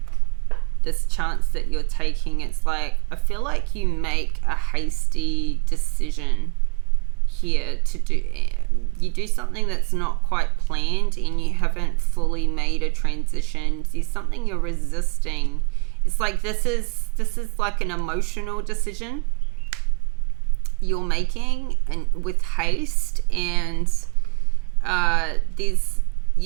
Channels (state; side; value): quieter; left; 35.2 dB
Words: this chance that you're taking, it's like, I feel like you make a hasty decision here to do, you do something that's not quite planned, and you haven't fully made a transition. There's something you're resisting. It's like this is like an emotional decision you're making, and with haste, and there's,